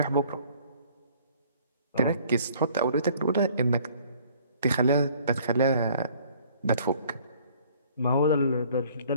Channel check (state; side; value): inverted; both; correlation -0.57